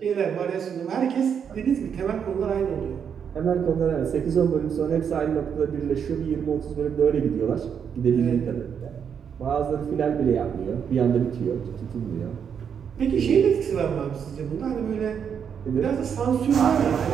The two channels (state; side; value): quieter; left; 7.5 dB